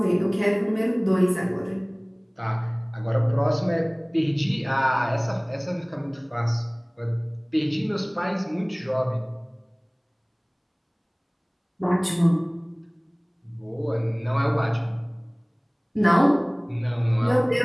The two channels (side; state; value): both; identical; correlation 1.00